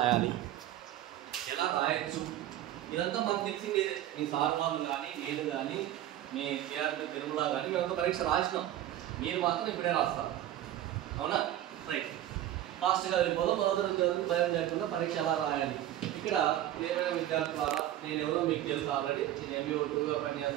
ఎలా రాయొచ్చు, ఇదంతా మనకు తెలిసింది. మీ సార్ వాళ్ళు కానీ, నేను కానీ, మీ విద్యార్థి తిరుమల కానీ మేమంతా పరీక్ష రాసినాం. మీరు మాత్రం ఇప్పుడే రాస్తారు, అవునా? రైట్, ఫాస్ట్గా వెళ్ళిపోదాం. 10వ తరగతి భయం లేకుండా పరీక్ష ఎలా రాయాలి. ఇక్కడ ప్రియమైన విద్యార్థులారా, నేను ఎవరో మీకు తెలుసు ఆల్రెడీ. నేను MBA 2గా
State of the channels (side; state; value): left; quieter; 12.8 dB